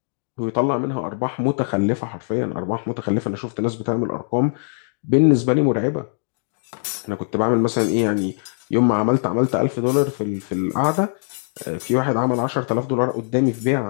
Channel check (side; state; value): right; silent; digital silence